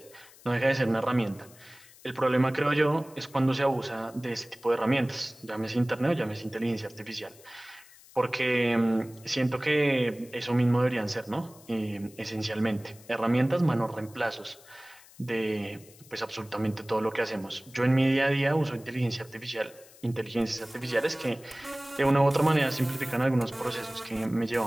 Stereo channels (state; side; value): noise; left; hiss, 23 dB below the sound